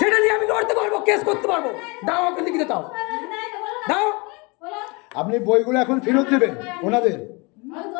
নিয়ে আমি লড়তে পারবো, কেস করতে পারবো। দাও আমাকে লিখিত দাও, দাও। আপনি বইগুলো এখন ফেরত দেবেন ওনাদের?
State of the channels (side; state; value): right; quieter; 28.2 dB